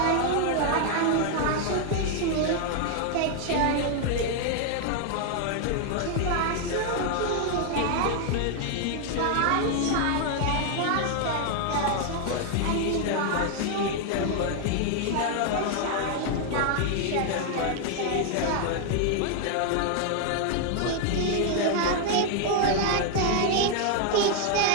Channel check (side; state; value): both; different; correlation 0.00